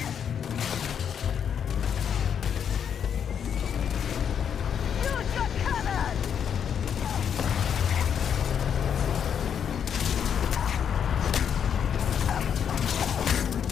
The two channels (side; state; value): right; quieter; 8.0 dB